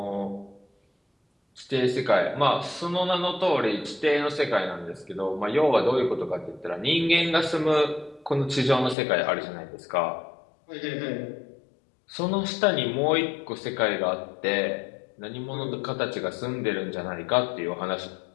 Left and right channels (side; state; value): right; drops out; at 9.0 s